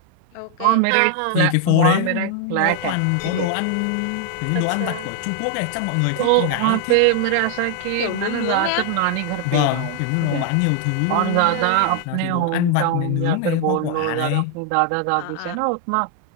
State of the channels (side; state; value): both; different; correlation 0.00